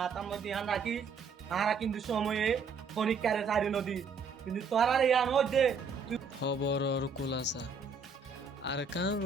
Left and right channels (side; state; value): left; quieter; 5.1 dB